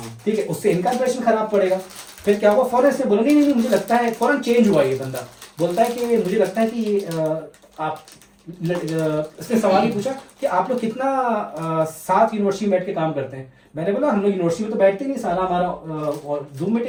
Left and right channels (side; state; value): both; identical; correlation 1.00